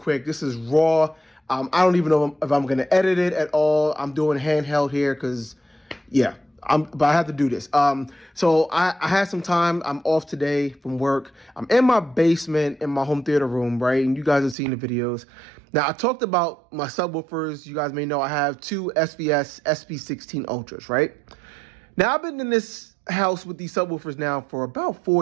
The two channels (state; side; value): drops out; left; at 14.6 s